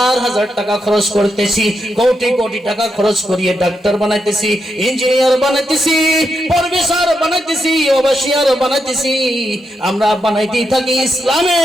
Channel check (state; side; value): normal; both; correlation 0.83